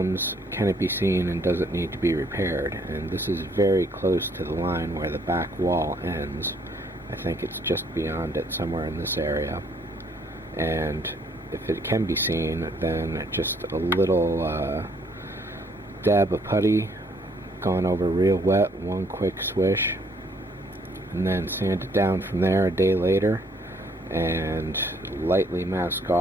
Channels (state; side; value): normal; both; correlation 0.66